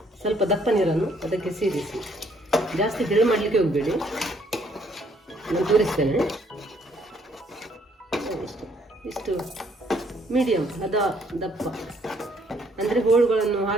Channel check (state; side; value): normal; both; correlation 0.66